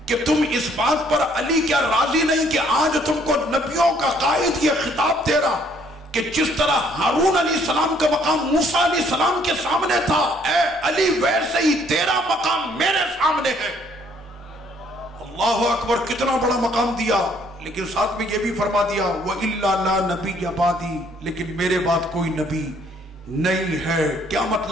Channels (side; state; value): both; normal; correlation 0.64